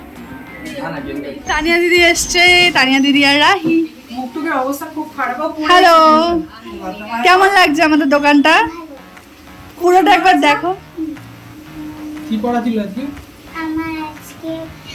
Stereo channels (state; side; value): identical; both; correlation 1.00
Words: তানিয়া দিদি এসছে, তানিয়া দিদি আর রাহি। মুখটুকের অবস্থা খুব খারাপ। হ্যালো, কেমন লাগছে আমাদের দোকানটা? পুরোটা একবার দেখো। কি পড়া ছিল আজকে? আমার আজকে